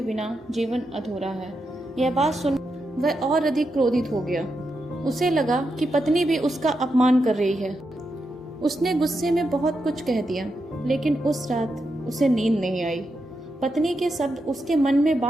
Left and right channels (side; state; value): both; normal; correlation 0.85